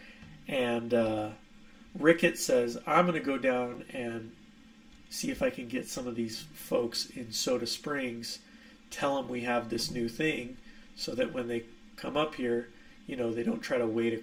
and Ricketts says, I'm going to go down and see if I can get some of these folks in Soda Springs, tell them we have this new thing, so that when they come up here, they don't try to wade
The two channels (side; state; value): both; identical; correlation 1.00